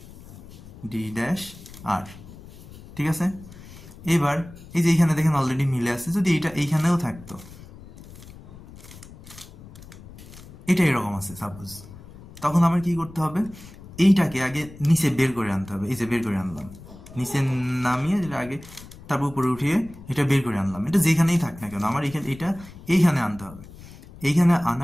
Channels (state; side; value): noise; left; rumble, 18 dB below the sound